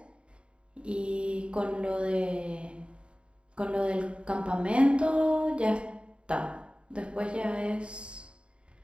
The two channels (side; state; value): left; late; 0.055 ms